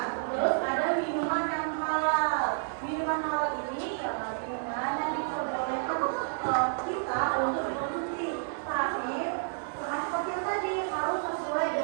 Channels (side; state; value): left; silent; 58 dB below the other